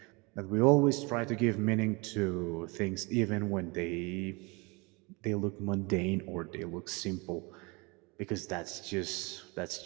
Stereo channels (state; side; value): quieter; left; 27.7 dB